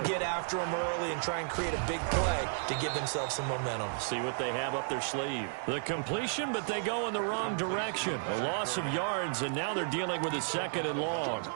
get after them early and try and create a big play to give themselves some momentum. See what they have up their sleeve. The completion, but they go in the wrong direction. A loss of yards, and now they're dealing with a 2nd and long.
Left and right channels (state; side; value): silent; left; 56 dB below the other